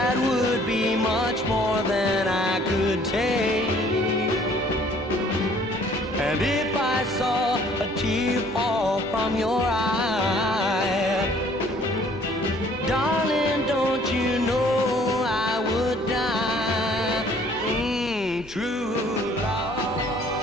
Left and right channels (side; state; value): both; normal; correlation 0.58